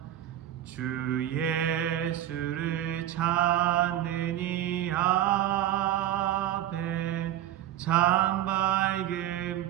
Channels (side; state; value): left; quieter; 12.2 dB